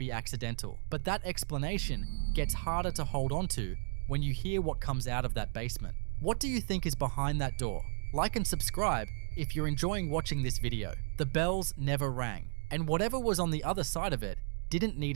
accidental. But that explanation gets harder to hold on to when you hear what comes out of that basement. What do you think is behind that door? Like and subscribe if you're enjoying watching this video. The bells never rang, and whatever was on the other side of it didn't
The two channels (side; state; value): left; silent; digital silence